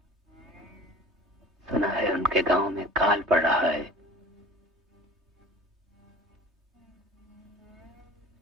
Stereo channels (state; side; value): normal; both; correlation 0.41